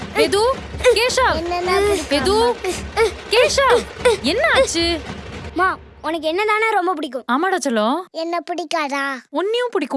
எது கேஷவ் என்னன்னா பிடிக்கும்? எது கேஷவ் என்ன ஆச்சு? மா உனக்கு என்னதானே ரொம்ப பிடிக்கும்? ஆமாடா செல்லம். என்ன பிடிக்காதா? உன்னையும்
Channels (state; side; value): identical; both; correlation 1.00